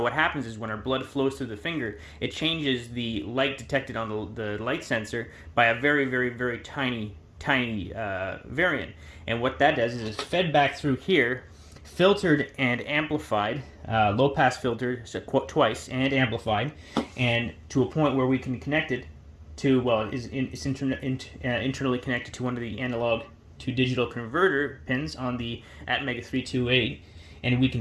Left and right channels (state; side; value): identical; both; correlation 1.00